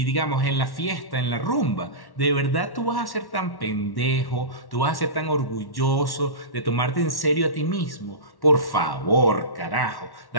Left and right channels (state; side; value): late; right; 1.1 ms